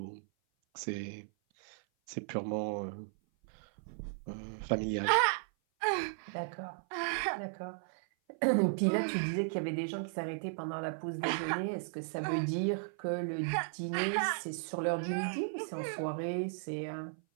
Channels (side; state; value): left; silent; 54 dB below the other